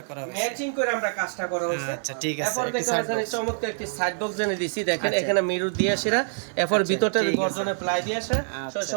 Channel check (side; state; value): left; silent; 61 dB below the other